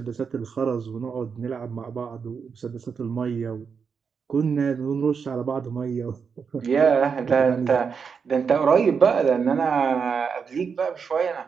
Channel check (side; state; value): left; quieter; 6.0 dB